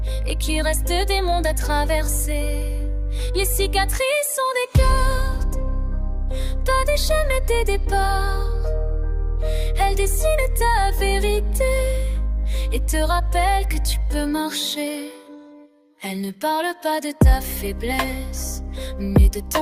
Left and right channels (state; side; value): identical; both; correlation 1.00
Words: et qu'il reste des mondes à traverser. Les cicatrices sont des cartes, pas des chaînes mais des départs. Elles dessinent ta vérité et te rappellent que tu peux marcher. Elles ne parlent pas de ta faiblesse, mais de